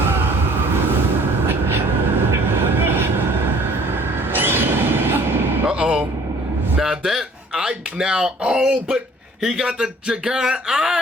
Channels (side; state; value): both; normal; correlation 0.54